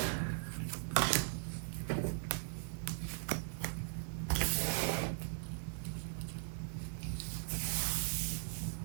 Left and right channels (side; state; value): left; silent; digital silence